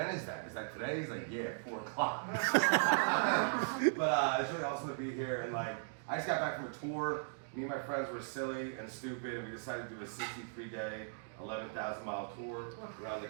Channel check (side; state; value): left; silent; digital silence